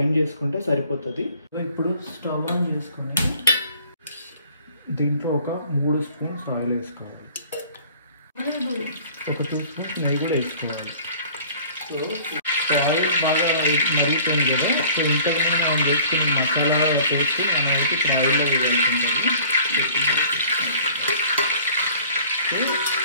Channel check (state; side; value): inverted; both; correlation -0.50